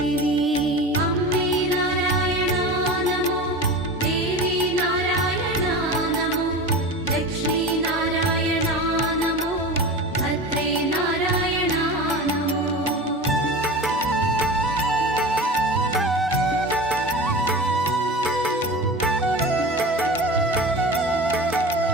അമ്മേ നാരായണാ നമോ ദേവി നാരായണാ നമോ ലക്ഷ്മീ നാരായണാ നമോ ഭദ്രേ നാരായണാ നമോ.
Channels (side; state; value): both; normal; correlation 0.31